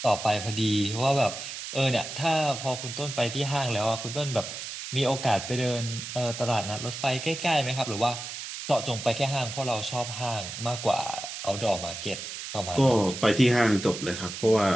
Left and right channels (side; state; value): right; noise; hiss, 8 dB below the sound